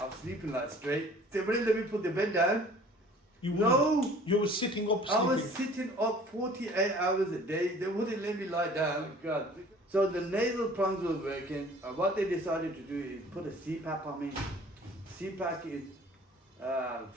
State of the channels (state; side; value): normal; both; correlation 0.50